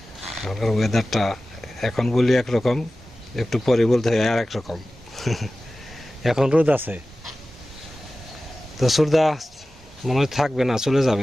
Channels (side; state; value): both; normal; correlation 0.96